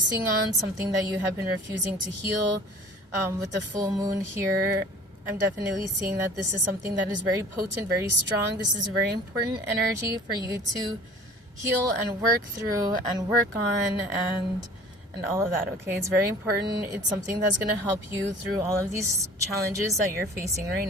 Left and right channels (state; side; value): normal; both; correlation 0.46